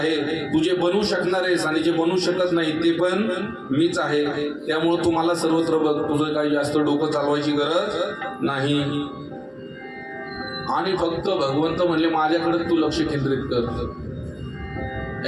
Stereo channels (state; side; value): identical; both; correlation 1.00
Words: तू जे बनवू शकणार आहेस आणि जे बनवू शकत नाही ते पण मीच आहे. त्यामुळे तू मला सर्वत्र बघ, तुझं काही जास्त डोकं चालवायची गरज नाही. आणि फक्त भगवंत म्हणले माझ्याकडे तू लक्ष केंद्रित कर.